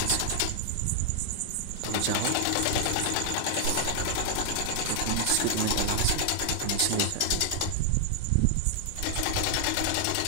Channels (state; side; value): different; both; correlation 0.00